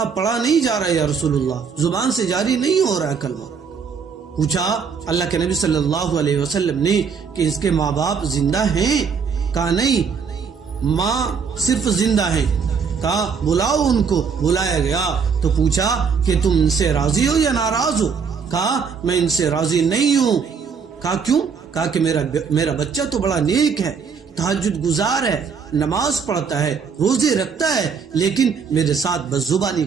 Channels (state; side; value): quieter; left; 6.0 dB